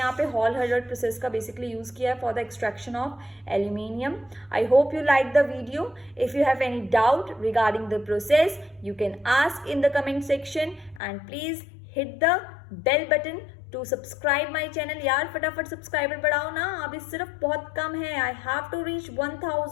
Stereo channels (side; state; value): right; drops out; at 11.0 s